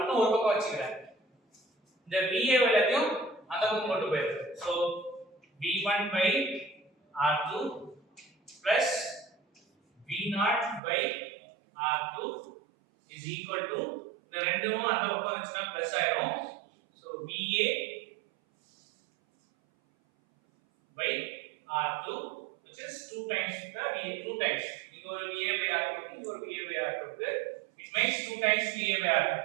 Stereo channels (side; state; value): left; drops out; at 10.8 s